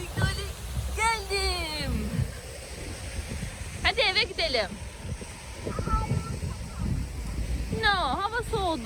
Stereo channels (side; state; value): both; identical; correlation 1.00